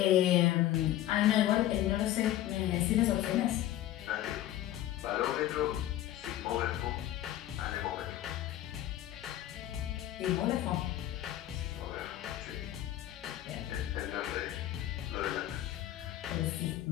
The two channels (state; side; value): quieter; right; 13.3 dB